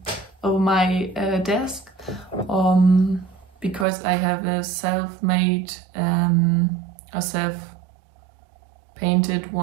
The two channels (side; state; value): left; drops out; at 3.9 s